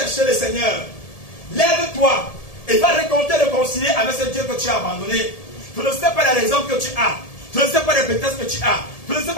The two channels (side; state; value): right; late; 1.7 ms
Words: le Seigneur. Lève-toi et va réconcilier avec ce Dieu que tu as abandonné. Je ne sais pas les raisons que tu as. Je ne sais pas les prétextes que tu as. Je ne sais